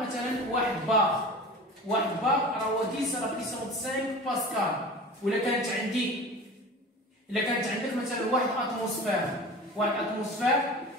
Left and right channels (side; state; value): both; normal; correlation 0.36